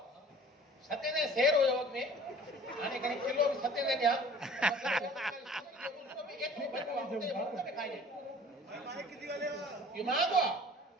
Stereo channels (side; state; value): both; normal; correlation 0.48